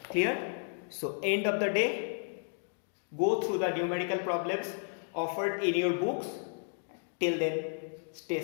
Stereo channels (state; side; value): silent; right; digital silence